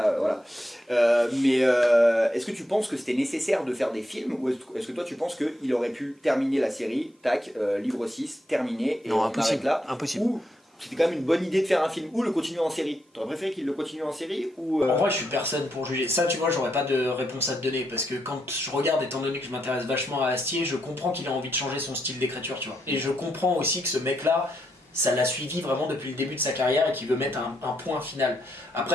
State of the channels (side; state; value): both; normal; correlation 0.80